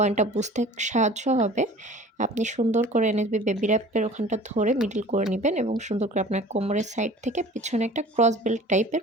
বুঝতে সাহায্য হবে। আপনি সুন্দর করে এনএসবি বেবি র‍্যাপের ওখানটা ধরে মিডল করে নিবেন এবং সুন্দর করে আপনার কোমরের সাইড থেকে পিছনে একটা ক্রস বেল্ট টাইপের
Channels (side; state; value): both; normal; correlation 0.45